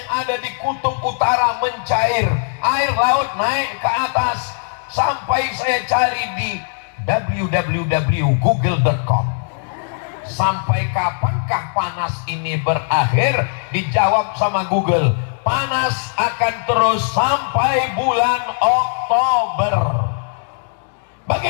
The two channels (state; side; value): silent; right; digital silence